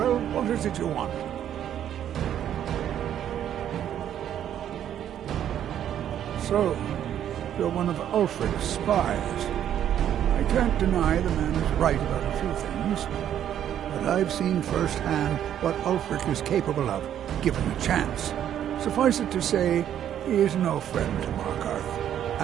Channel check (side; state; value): left; quieter; 10.3 dB